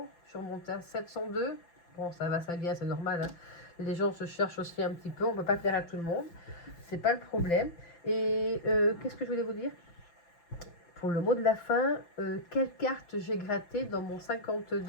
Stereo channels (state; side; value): late; right; 5.9 ms